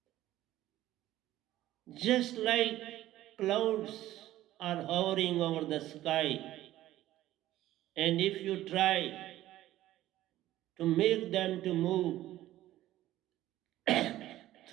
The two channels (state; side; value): quieter; left; 14.6 dB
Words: Just like clouds are hovering over the sky, and if you try to make them to move